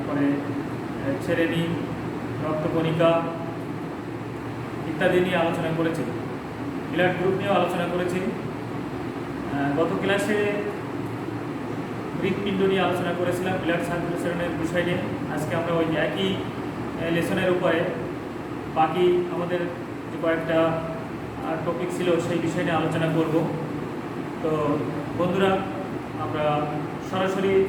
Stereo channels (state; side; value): identical; both; correlation 1.00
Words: শ্রেণী, রক্তকণিকা ইত্যাদি নিয়ে আলোচনা করেছি। ব্লাড গ্রুপ নিয়েও আলোচনা করেছি। গত ক্লাসে হৃৎপিণ্ড নিয়ে আলোচনা করেছিলাম, ব্লাড সার্কুলেশনের বিষয় নিয়ে। আজকে আমরা ওই একই লেসনের উপরে বাকি আমাদের যে কয়েকটা টপিক ছিল সেই বিষয় নিয়ে আলোচনা করব। তো বন্ধুরা, আমরা সরাসরি